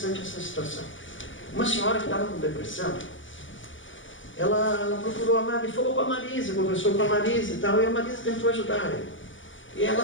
essa situação. Uma senhora que estava com depressão, ela procurou a Marisa, falou com a Marisa, conversou com a Marisa e tal, e a Marisa tentou ajudar ela. E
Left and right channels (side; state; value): right; late; 0.56 ms